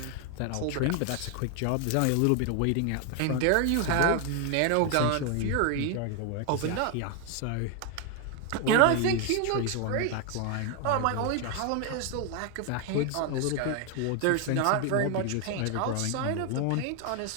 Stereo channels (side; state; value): both; different; correlation 0.01